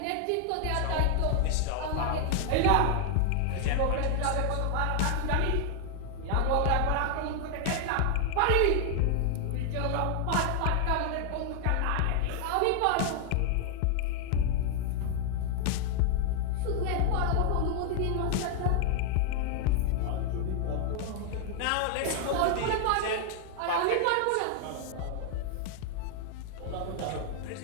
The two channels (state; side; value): different; both; correlation 0.00